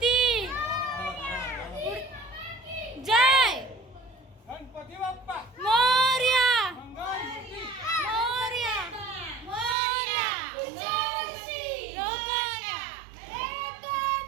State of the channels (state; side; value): drops out; left; at 9.8 s